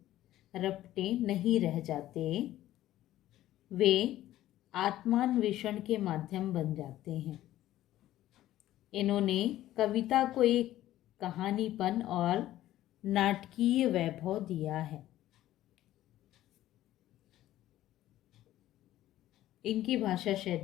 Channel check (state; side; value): quieter; right; 14.1 dB